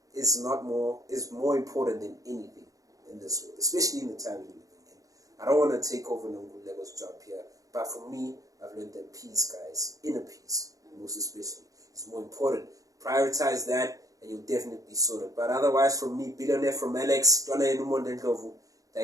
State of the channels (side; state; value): left; late; 0.17 ms